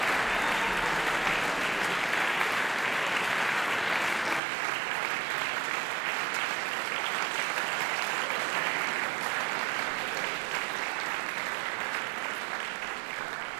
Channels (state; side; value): drops out; left; at 4.4 s